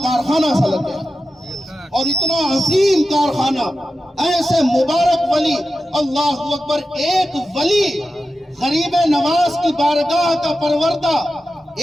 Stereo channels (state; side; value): normal; both; correlation 0.92